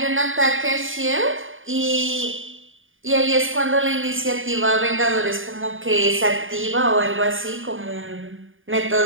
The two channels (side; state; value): left; late; 0.58 ms